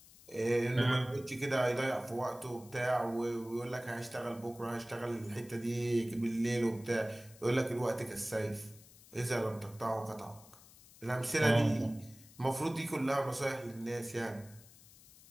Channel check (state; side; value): noise; left; hiss, 22 dB below the sound